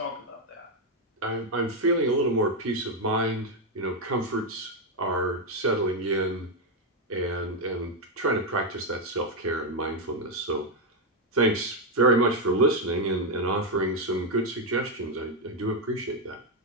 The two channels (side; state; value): both; normal; correlation 0.03